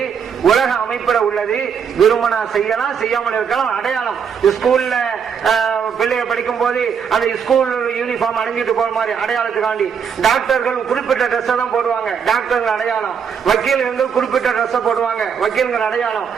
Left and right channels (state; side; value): quieter; left; 7.0 dB